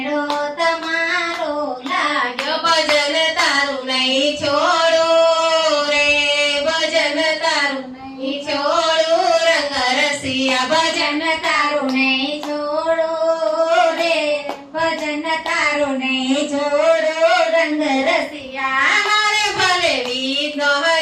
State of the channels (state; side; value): identical; both; correlation 1.00